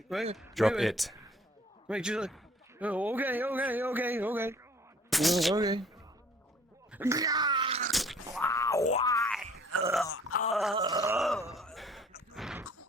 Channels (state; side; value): normal; both; correlation 0.54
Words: Wait. Drop it. Make sure. Oh, okay, okay, okay, okay. Okay. Why?